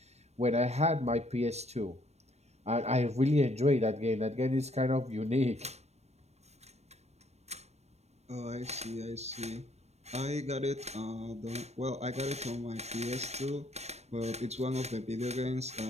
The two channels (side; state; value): left; late; 0.31 ms